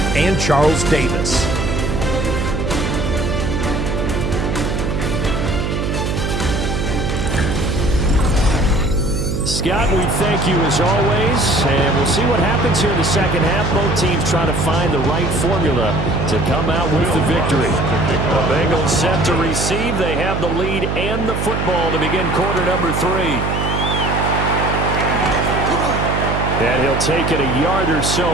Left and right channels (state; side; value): noise; right; hum, 1 dB below the sound